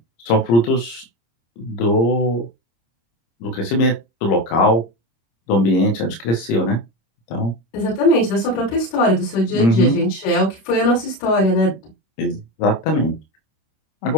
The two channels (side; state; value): right; late; 26 ms